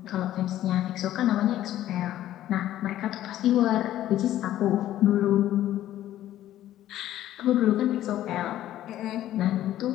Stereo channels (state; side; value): quieter; right; 13.0 dB